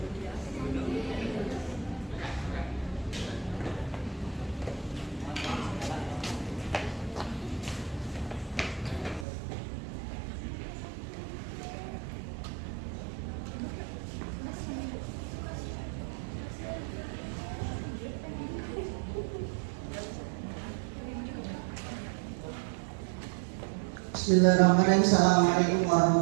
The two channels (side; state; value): left; drops out; at 9.2 s